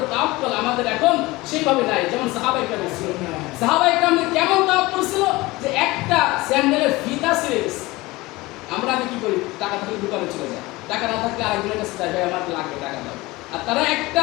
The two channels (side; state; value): right; quieter; 20.8 dB